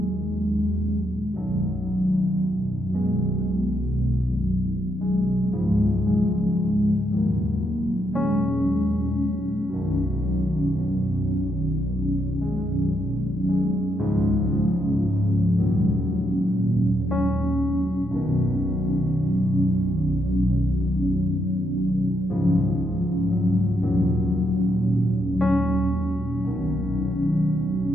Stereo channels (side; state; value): both; normal; correlation 0.79